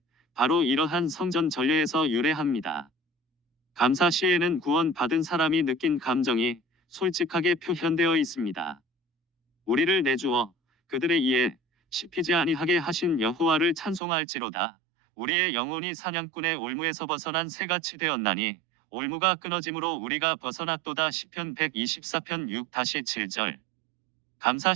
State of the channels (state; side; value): drops out; left; at 14.0 s